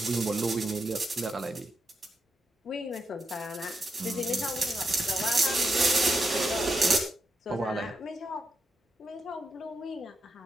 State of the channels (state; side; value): normal; both; correlation 0.83